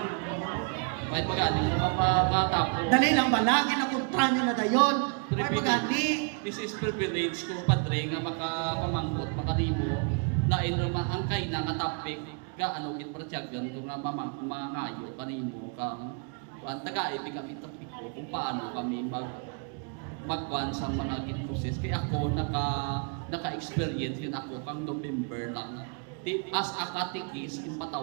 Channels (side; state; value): left; quieter; 39.7 dB